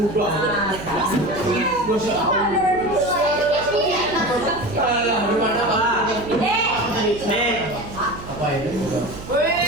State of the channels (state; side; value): noise; right; hum, 13 dB below the sound